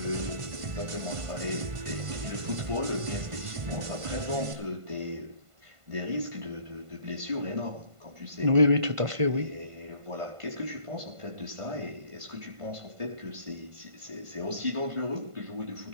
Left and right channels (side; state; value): left; late; 1.5 ms